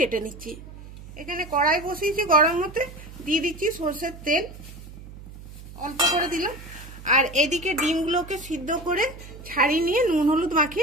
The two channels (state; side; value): noise; right; hum, 15 dB below the sound